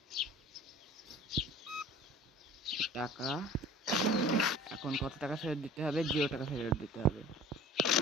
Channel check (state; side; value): normal; both; correlation 0.44